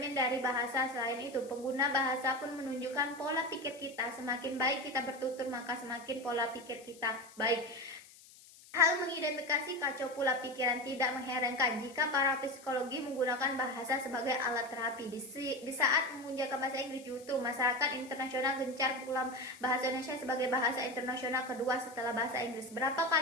dari bahasa. Selain itu, pengguna bahasa pun menunjukkan pola pikir kita. Semakin baik kita bertutur, maka semakin pola pikir kita baik. Hal mengidentifikasi kacau pula pikiran. Tidak mengherankan jika para psikologi menggunakan bahasa sebagai alat terapi. Di saat memunculkan bahasa Inggris, justru masyarakat internasional gencar pula bahasa Indonesia sebagai bahasa internasional kedua setelah bahasa Inggris. Berapa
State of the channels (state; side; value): noise; left; hiss, 22 dB below the sound